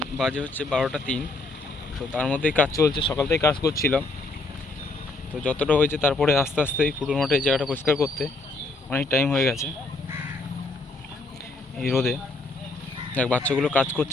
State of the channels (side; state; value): right; quieter; 3.0 dB